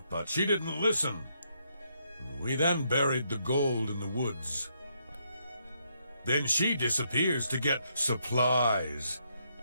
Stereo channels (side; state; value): both; inverted; correlation -0.76